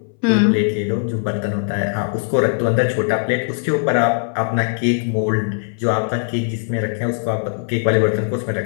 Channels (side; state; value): right; silent; 64 dB below the other